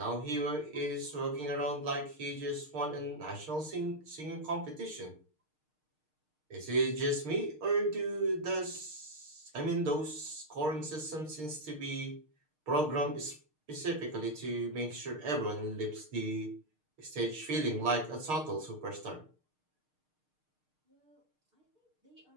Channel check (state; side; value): late; left; 6.5 ms